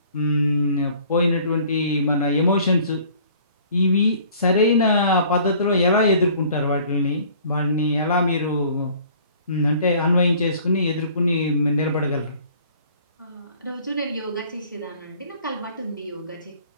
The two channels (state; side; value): inverted; both; correlation -0.53